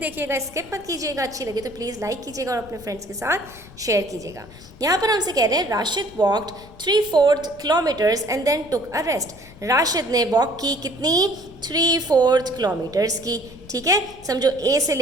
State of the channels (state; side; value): noise; left; rumble, 21 dB below the sound